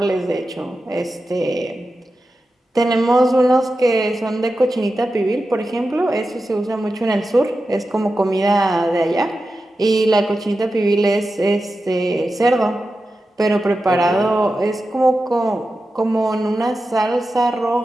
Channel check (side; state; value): both; normal; correlation 0.92